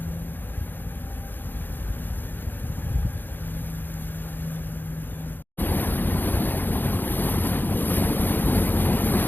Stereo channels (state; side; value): late; right; 0.092 ms